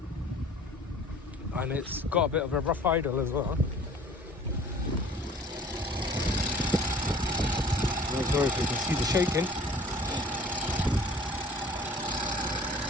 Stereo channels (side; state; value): both; normal; correlation 0.49